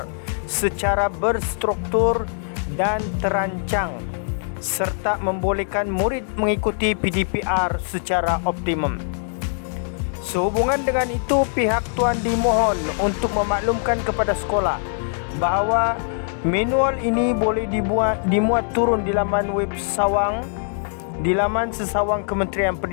secara berstruktur dan terancang serta membolehkan murid mengikuti PDPR secara optimum. Sehubungan dengan itu, pihak tuan dimohon untuk memaklumkan kepada sekolah bahawa manual ini boleh dimuat turun di laman web sesawang Kementerian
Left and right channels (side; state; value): right; silent; digital silence